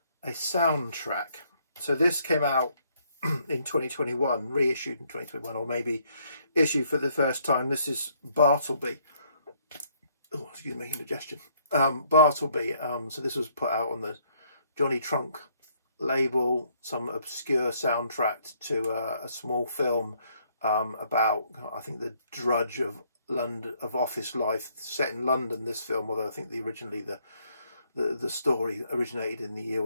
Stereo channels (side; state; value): both; inverted; correlation -0.68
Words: soundtrack. So this came out in 2021, reissued in 2021, or maybe issued for the first time. This is Bartleby. Oh, excuse me, indigestion. Bartleby. So this was put out on the Johnny Trunk label, some obscure soundtrack to a small film about, I think, the drudge of London, of office life, set in London. This film, although I think originally the story originated in the